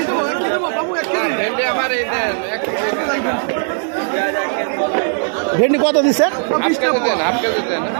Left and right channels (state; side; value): silent; left; digital silence